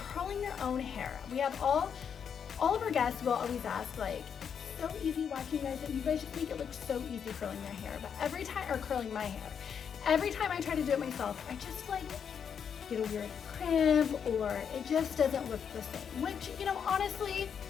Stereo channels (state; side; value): quieter; right; 7.4 dB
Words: your own hair. We have all of our guests will always ask, like, it's so easy watching you guys, and you guys just make it look so easy curling your hair. But every time, or curling my hair, every time I try to do it myself, I just like get a weird crimp, or it just doesn't look the same. Which, you know, honestly,